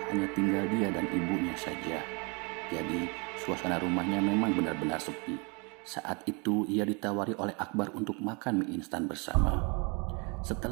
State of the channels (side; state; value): left; quieter; 31.7 dB